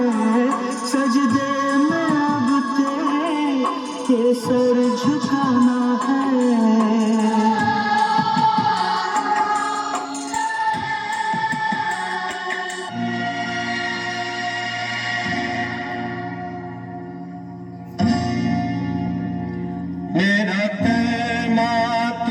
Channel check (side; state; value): both; identical; correlation 1.00